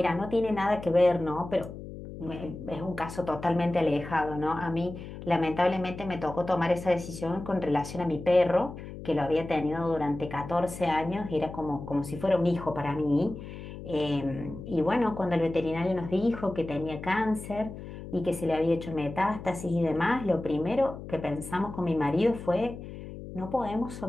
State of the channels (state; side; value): noise; left; hum, 11 dB below the sound